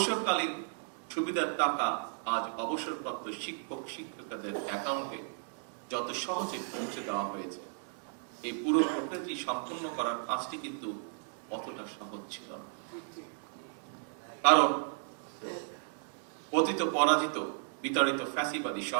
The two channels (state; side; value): silent; left; digital silence